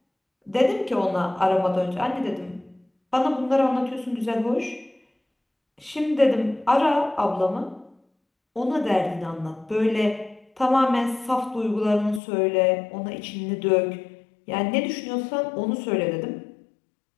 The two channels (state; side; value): drops out; right; at 12.2 s